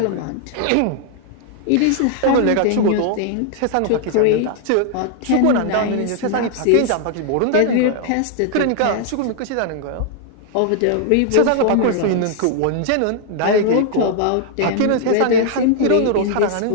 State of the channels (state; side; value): different; both; correlation 0.00